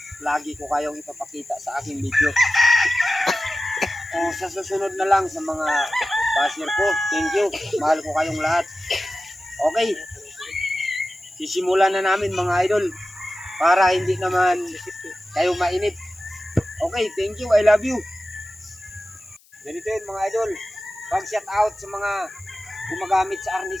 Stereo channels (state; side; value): noise; left; hiss, 30 dB below the sound